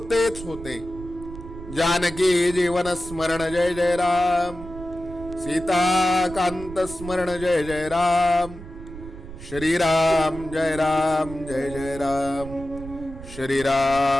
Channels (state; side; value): noise; right; rumble, 13 dB below the sound